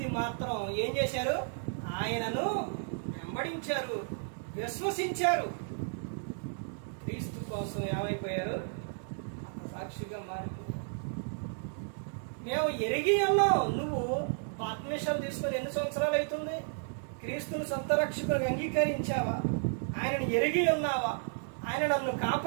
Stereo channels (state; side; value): silent; left; digital silence